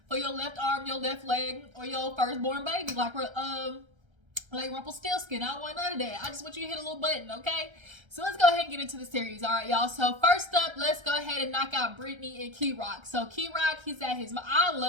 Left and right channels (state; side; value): late; left; 1.3 ms